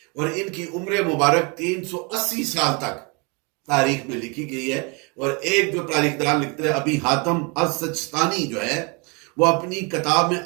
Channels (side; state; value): left; quieter; 31.3 dB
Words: اور ان کی عمر مبارک 380 سال تک تاریخ میں لکھی گئی ہے. اور ایک جو تاریخ دان لکھتے ہیں ابی حاتم السجستانی جو ہے وہ اپنی کتاب میں